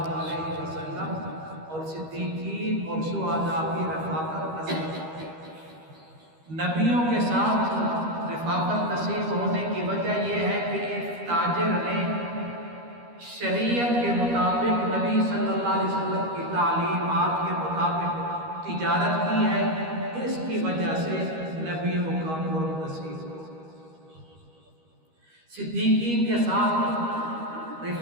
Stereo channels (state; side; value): late; left; 13 ms